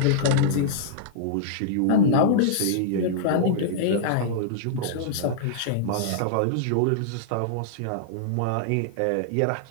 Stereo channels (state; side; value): different; both; correlation -0.02